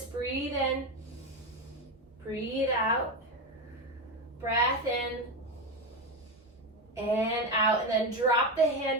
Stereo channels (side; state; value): both; normal; correlation 0.14